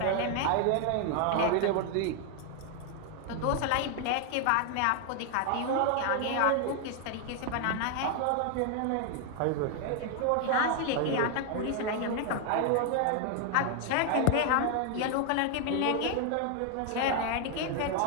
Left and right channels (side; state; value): both; different; correlation 0.00